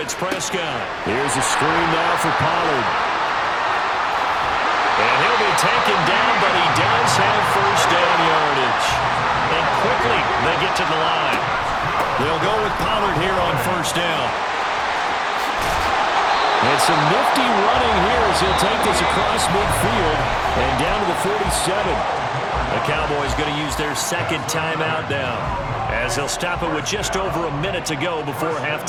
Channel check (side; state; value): both; identical; correlation 1.00